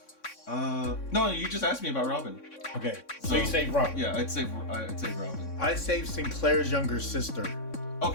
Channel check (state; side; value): late; right; 3.6 ms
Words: No, you just asked me about Robin. Okay, so you saved Robin. Yeah, I'd save Robin. I saved Sinclair's younger sister.